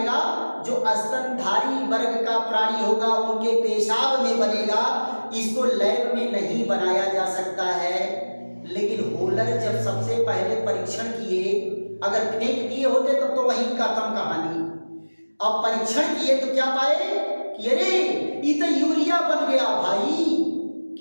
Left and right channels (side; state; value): both; inverted; correlation -1.00